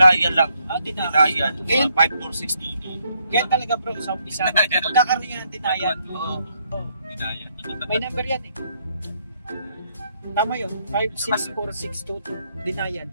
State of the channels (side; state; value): both; inverted; correlation -0.73